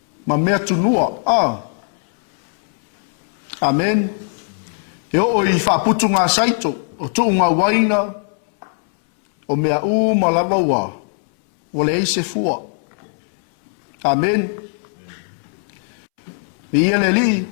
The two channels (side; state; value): right; silent; 66 dB below the other